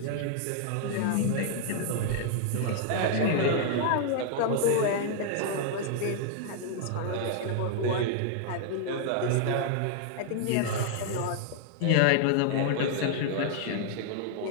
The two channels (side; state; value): both; different; correlation 0.00